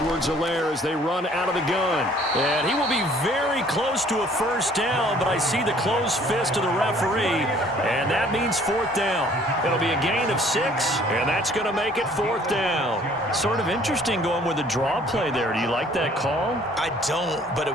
as they run out of the gun. And he will be very close to a first down, but I see the closed fist of the referee, and that means 4th down. It'll be a gain of 6, and that's going to make it 4th down. Sort of interesting going with a draw play there. Do you like that call? I don't, but it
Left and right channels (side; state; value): both; normal; correlation 0.57